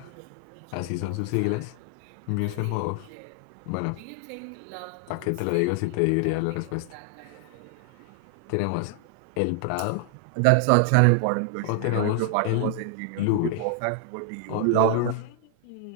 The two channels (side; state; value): both; different; correlation 0.00